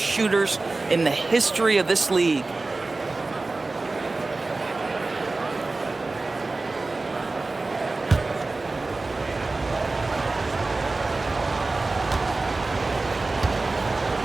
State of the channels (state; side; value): quieter; left; 3.4 dB